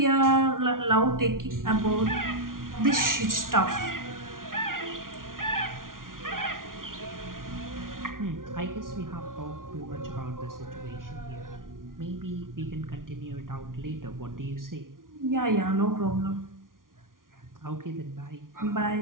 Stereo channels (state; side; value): late; left; 0.90 ms